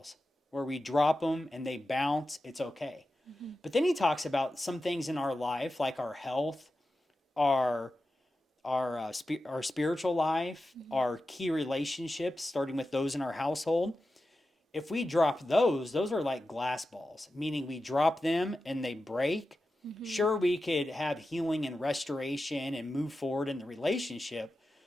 where we drop them and they bounce, it's okay. Mm-hmm. But then he talks about some things in our life, like our health, our our spiritual life, Mm-hmm. our key relationships, starting with those in our household. If we drop those are like glass balls, meaning we drop them and they break. Mm-hmm. Sure, we could have healing and restoration and move forward in the relationship,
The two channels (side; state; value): both; normal; correlation 0.92